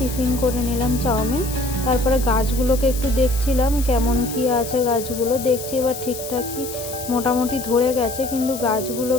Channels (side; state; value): left; noise; hiss, 10 dB below the sound